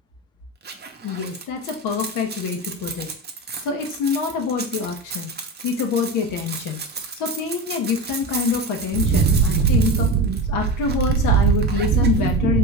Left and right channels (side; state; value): both; normal; correlation 0.24